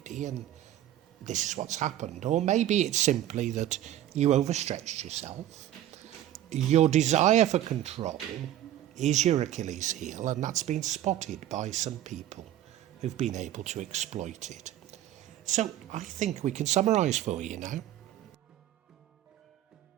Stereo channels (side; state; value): left; quieter; 12.7 dB